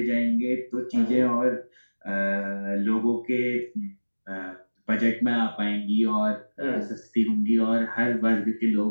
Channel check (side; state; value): both; inverted; correlation -1.00